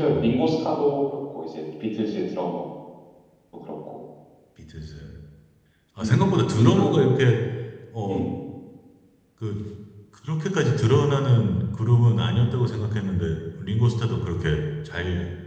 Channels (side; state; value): both; identical; correlation 1.00